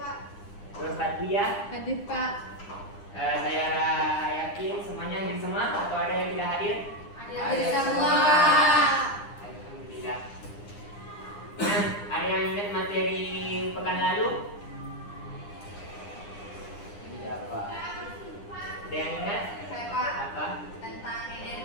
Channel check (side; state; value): right; late; 9.8 ms